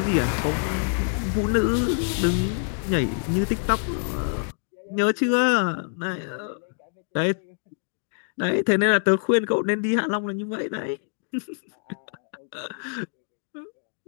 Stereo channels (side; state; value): right; silent; digital silence